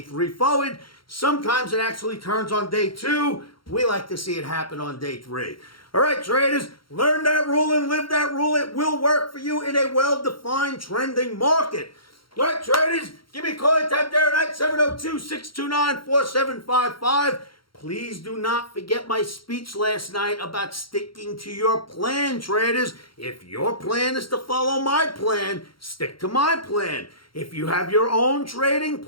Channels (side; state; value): right; late; 0.73 ms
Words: forward. Sometimes it actually turns on day 2. We like to see it happen on day 3. All right, traders, learn that rule and live that rule. It will work for you in a well-defined trending market. All right, traders, give me a call anytime there at 702-629-4755. Please do not forget my speech last night about sticking to your plan, traders. If your plan is to follow my plan, stick to my plan. If you have your own trading